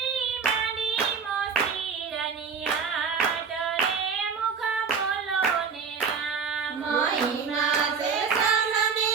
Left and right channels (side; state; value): left; quieter; 5.9 dB